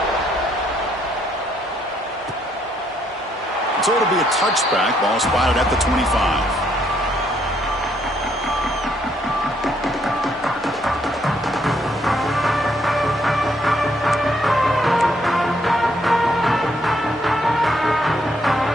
So it'll be a touchback. Ball spotted at the 25.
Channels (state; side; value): normal; both; correlation 0.71